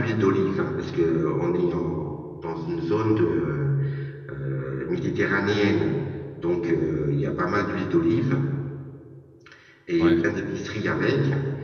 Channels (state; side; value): identical; both; correlation 1.00